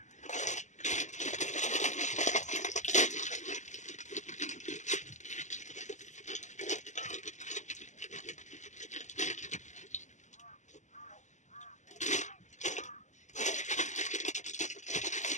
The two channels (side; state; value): right; late; 0.34 ms